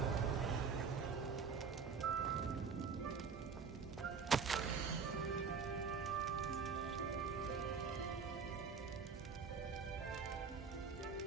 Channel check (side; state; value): left; quieter; 5.7 dB